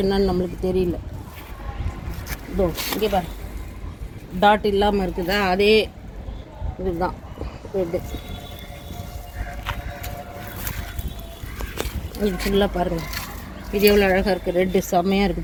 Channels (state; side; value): identical; both; correlation 1.00